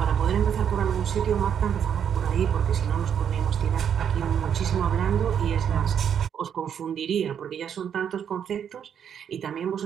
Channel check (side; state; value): left; quieter; 8.4 dB